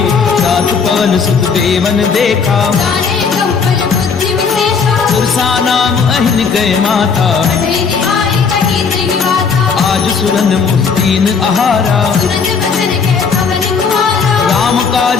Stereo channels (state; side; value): quieter; right; 5.6 dB